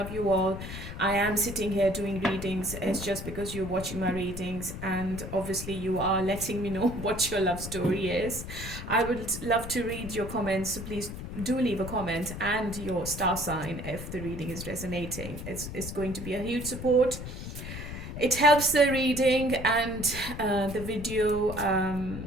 you all. I am sitting here doing readings. It's just because you're watching my readings, and obviously, you are letting me know what your love story is. I would love to read your comments, so please do leave a comment and your star sign if the reading is resonating. It's going to be a huge support. It helps the reading and the video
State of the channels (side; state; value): left; noise; rumble, 8 dB below the sound